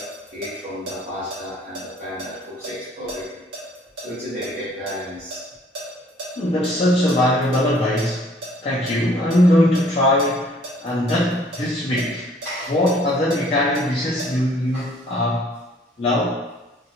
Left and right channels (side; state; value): both; normal; correlation 0.59